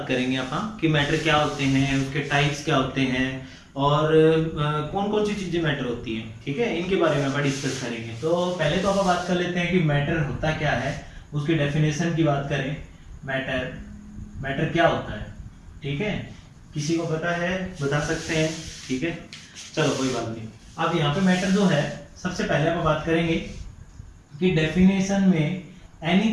करेंगे अपन कि मैटर क्या होते हैं, उसके टाइप्स क्या होते हैं और कौन कौन सी चीजें मैटर होती हैं। ठीक है, इनके बारे में अपन डिस्कस करेंगे। तो पहले तो अपन बात कर लेते हैं कि मैटर होता क्या है, उसकी डेफिनेशन की बात करें। मैटर मैटर क्या होता है। ठीक है, किसी को पता है बता सकते हैं। ठीक है, चलो कोई बात नहीं। अब यहाँ पे मैटर जो है सबसे पहले अपन बात करेंगे कि डेफिनेशन में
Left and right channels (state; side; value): identical; both; correlation 1.00